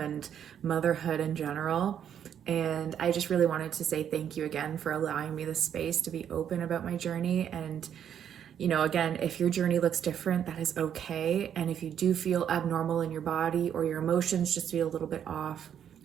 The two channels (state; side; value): quieter; left; 9.1 dB